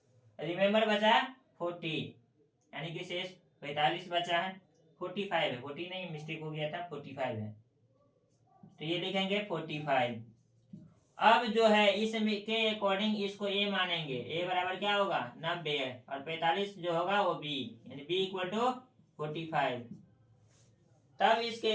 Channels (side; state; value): both; identical; correlation 1.00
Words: रिमेम्बर बचा 40, यानी कि शेष 45 बचा है। 45 है, 40 नहीं मिस्टेक हो गया था, 45 है तो ये लिखेंगे 45। अब जो है इसमें के अकॉर्डिंग इसको ए मानेंगे, ए बराबर क्या होगा 90 और 45 जो होगा वो बी, यानी बी इक्वल टू 45। तब इसके